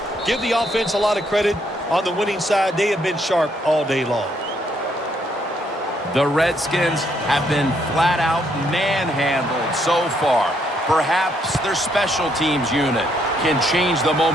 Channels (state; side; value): normal; both; correlation 0.72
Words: give the offense a lot of credit. On the winning side, they have been sharp all day long. The Redskins have been flat out manhandled so far. Perhaps their special teams unit can change the